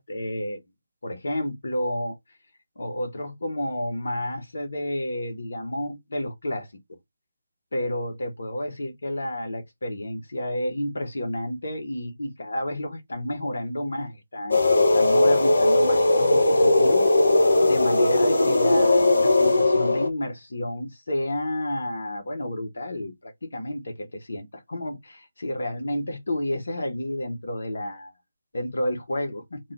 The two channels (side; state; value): both; inverted; correlation -0.92